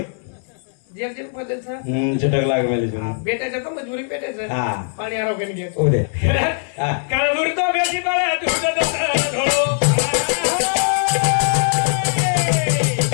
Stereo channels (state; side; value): silent; right; 61 dB below the other